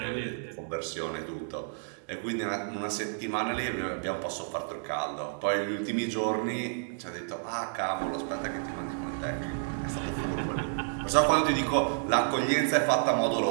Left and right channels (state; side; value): silent; left; digital silence